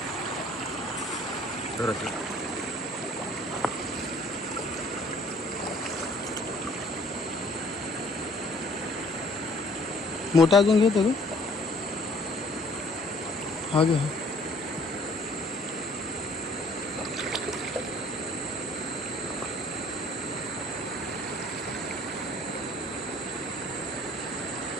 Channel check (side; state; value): both; normal; correlation 0.57